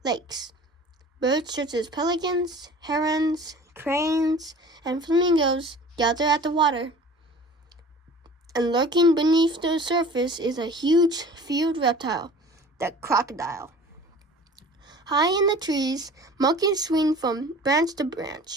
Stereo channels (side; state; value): both; normal; correlation 0.43